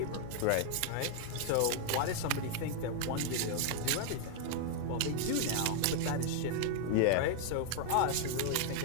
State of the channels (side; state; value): both; different; correlation 0.00